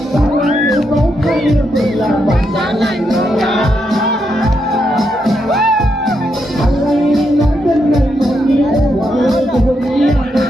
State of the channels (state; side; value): normal; both; correlation 0.81